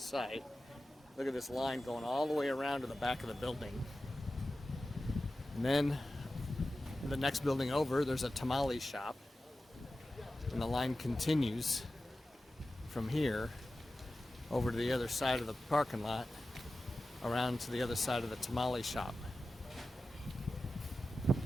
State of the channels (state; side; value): normal; both; correlation 0.94